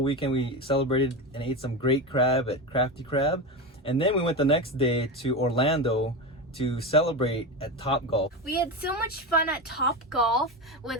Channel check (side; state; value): both; normal; correlation 0.20